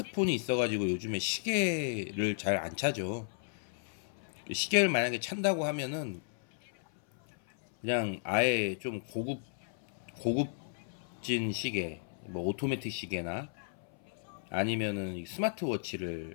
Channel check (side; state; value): right; silent; 55 dB below the other